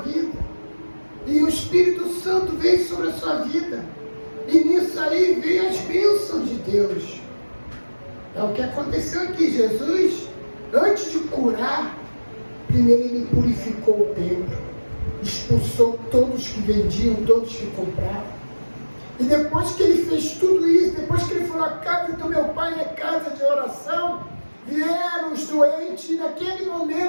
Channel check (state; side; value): inverted; both; correlation -1.00